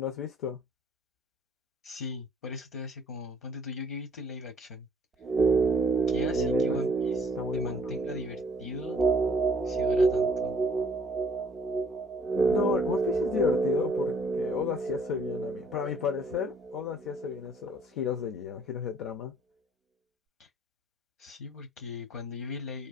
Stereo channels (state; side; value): normal; both; correlation 0.61